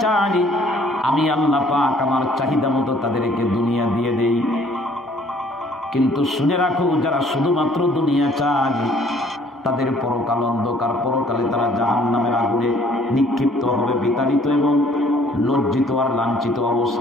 চায় আমি আল্লাহ পাক আমার চাহিদা মতো তাদেরকে দুনিয়া দিয়ে দেই। কিন্তু শুনে রাখো, যারা শুধুমাত্র দুনিয়া চায় তাদের পরকাল অন্ধকার, পরকালে তারা জাহান্নামের আগুনে নিক্ষিপ্ত হবে, বিতাড়িত এবং লজ্জিত আর লাঞ্ছিত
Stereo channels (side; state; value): both; normal; correlation 0.59